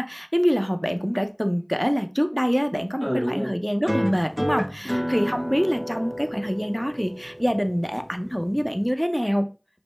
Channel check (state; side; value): identical; both; correlation 1.00